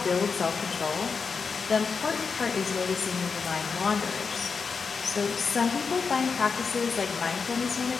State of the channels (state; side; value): quieter; right; 5.3 dB